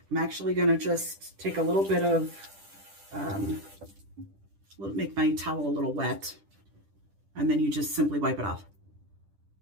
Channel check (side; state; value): left; late; 10 ms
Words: I'm actually gonna just take a little bit of, make my towel a little wet. And then you just simply wipe it off.